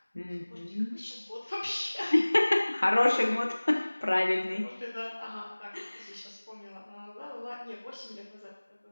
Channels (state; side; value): inverted; both; correlation -1.00